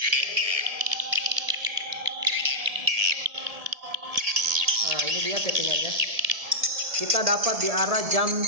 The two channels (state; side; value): late; left; 1.7 ms